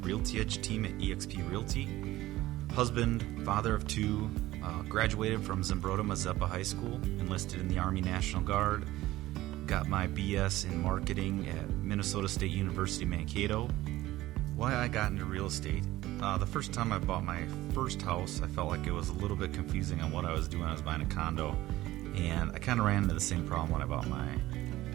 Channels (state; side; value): quieter; left; 16.6 dB